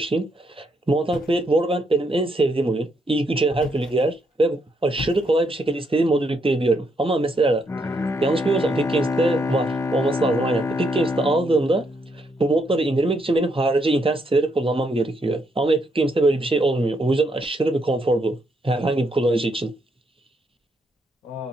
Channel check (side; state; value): both; normal; correlation 0.76